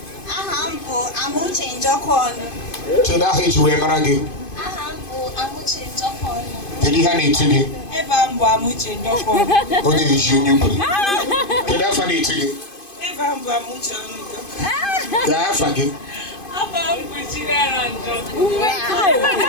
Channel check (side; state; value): right; late; 2.5 ms